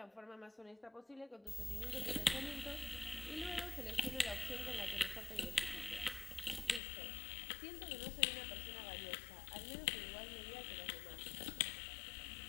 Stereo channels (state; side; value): drops out; right; at 6.8 s